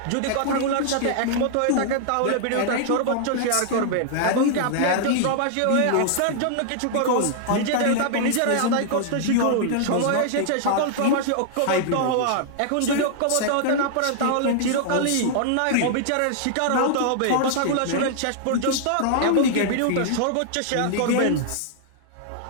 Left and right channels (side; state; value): both; different; correlation -0.01